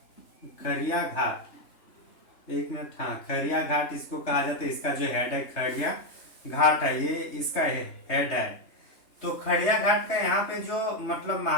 घाट। एक मिनट, हाँ, खड़िया घाट इसको कहा जाता है। इसका जो हेड है खड़िया घाट है, ये इसका हेड है। तो खड़िया घाट का यहाँ पे जो मतलब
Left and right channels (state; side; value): late; right; 4.4 ms